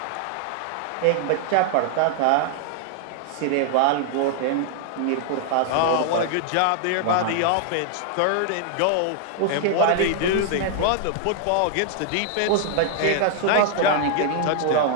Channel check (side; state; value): both; different; correlation -0.01